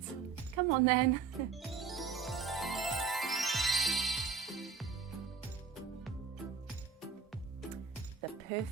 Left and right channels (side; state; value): left; quieter; 5.8 dB